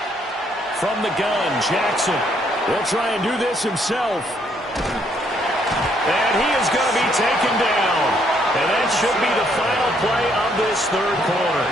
From the gun, Jackson will try and do this himself. And he is going to be taken down. And that should be the final play of this 3rd quarter.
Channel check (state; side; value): normal; both; correlation 0.69